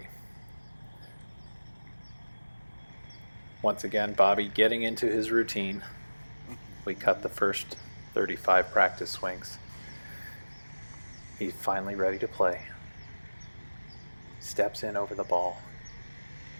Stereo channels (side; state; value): both; inverted; correlation -1.00